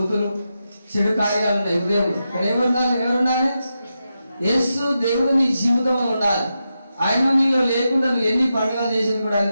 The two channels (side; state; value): both; inverted; correlation -0.88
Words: చెడు కార్యాలు ఉన్నాయి హృదయంలో. ఇక్కడ ఎవరుండాలి? యేసు దేవుడు నీ జీవితంలో ఉండాలి. ఆయన నీలో లేకుండా నువ్వు ఎన్ని పండుగలు చేసేది కూడా ఆయన